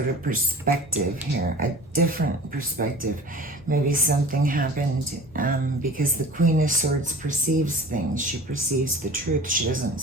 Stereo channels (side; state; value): both; normal; correlation 0.40